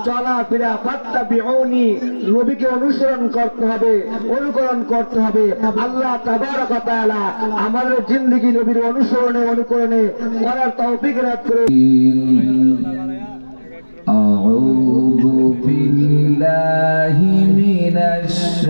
চলাফেরা ফাত্তাবিউনি, নবীকে অনুসরণ করতে হবে, অনুকরণ করতে হবে। আল্লাহ তাবারক ওয়া তাআলা আমাদের জিন্দেগি নবীর অনুসরণে অনুকরণে করার তৌফিক দান করুন। আউযু বিল্লাহি মিনাশ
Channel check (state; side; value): inverted; both; correlation -1.00